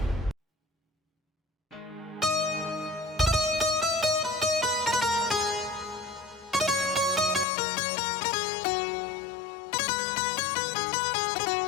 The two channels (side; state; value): right; drops out; at 7.5 s